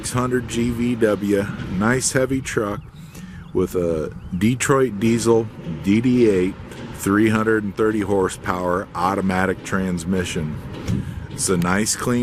GVW. Nice heavy truck with a Detroit diesel DD8 330 horsepower automatic transmission. It's a nice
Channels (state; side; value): identical; both; correlation 1.00